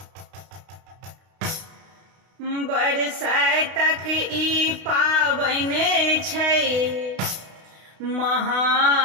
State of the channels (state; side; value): late; left; 32 ms